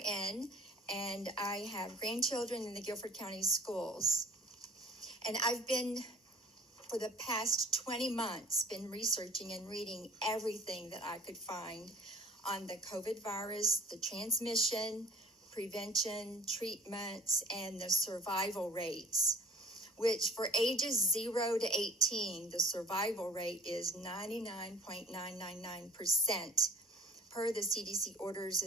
and I have grandchildren in the Guilford County schools. And I've been, for the past 20 months, been researching and reading everything that I could find on the COVID virus, the transmission, prevention, treatments, and the survival rates, which for ages 0 to 18, the survival rate is 99.999% per the CDC orders,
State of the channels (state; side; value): normal; both; correlation 0.49